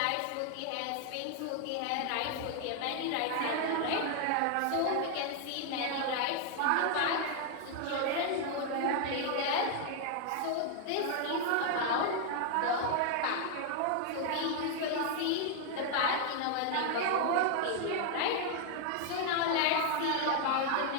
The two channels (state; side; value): different; both; correlation 0.00